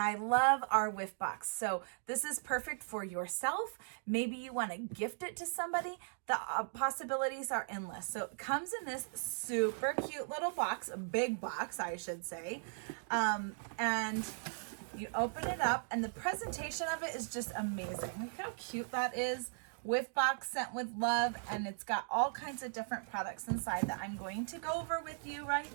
love our whiff box. So this is perfect for yourself. Maybe you want to gift it to somebody. The possibilities are endless. So it comes in this super cute little box, a big box, I should say. And you open it up and the presentation of it is just amazing. Look how cute that is. Whiff box sent with love, and it's got all kinds of different products inside that I'm going to go over with you right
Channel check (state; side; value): silent; left; digital silence